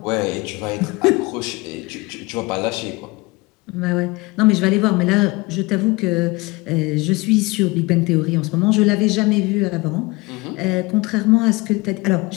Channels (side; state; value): right; quieter; 24.1 dB